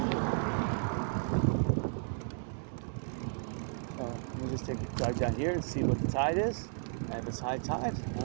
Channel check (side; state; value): left; silent; 55 dB below the other